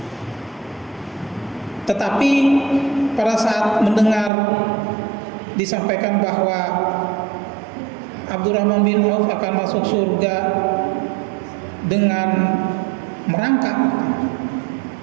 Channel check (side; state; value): left; drops out; at 4.3 s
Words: Tetapi pada saat mendengar disampaikan bahwa Abdurrahman bin Auf akan masuk surga dengan merangkak,